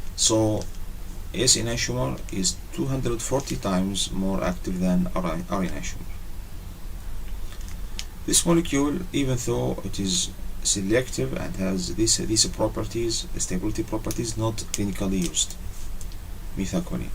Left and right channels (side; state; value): both; identical; correlation 1.00